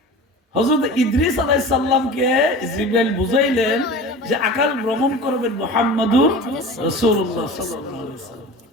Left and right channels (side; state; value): both; normal; correlation 0.35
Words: হযরত ইদ্রিস আলাইহিস সালামকে জিবরাইল বুঝাইলেন যে আকাশ ভ্রমণ করবেন মুহাম্মদুর রাসূলুল্লাহ সাল্লাল্লাহু আলাইহি ওয়াসাল্লাম।